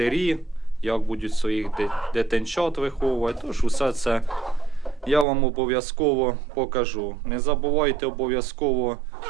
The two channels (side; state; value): left; drops out; at 5.2 s